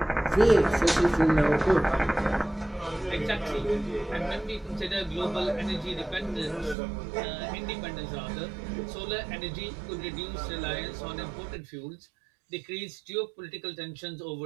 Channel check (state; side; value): drops out; left; at 6.8 s